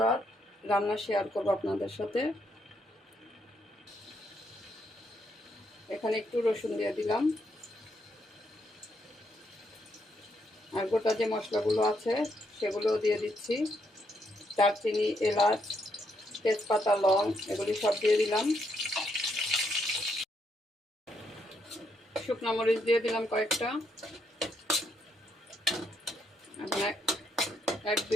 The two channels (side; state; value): both; normal; correlation 0.76